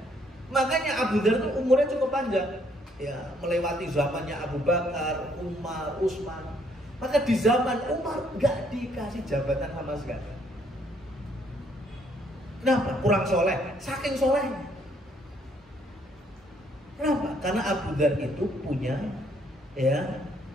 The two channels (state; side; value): normal; both; correlation 0.68